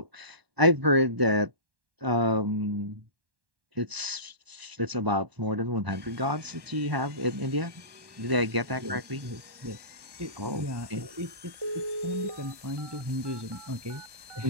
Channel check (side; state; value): left; late; 1.1 ms